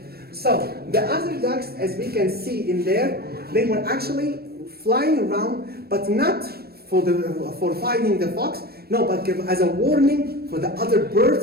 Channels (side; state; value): left; late; 0.46 ms